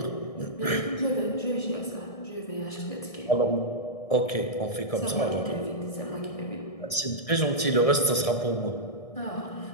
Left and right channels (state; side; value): late; right; 1.6 ms